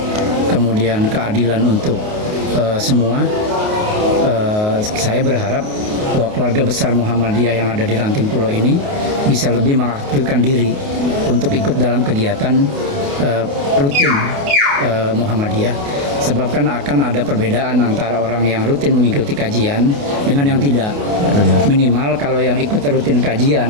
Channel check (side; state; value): left; late; 28 ms